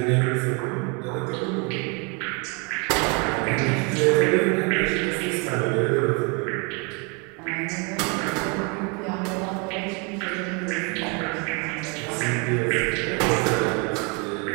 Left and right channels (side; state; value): left; quieter; 32.6 dB